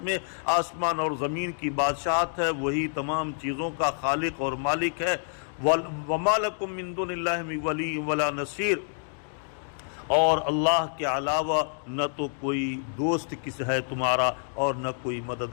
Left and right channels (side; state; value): right; silent; digital silence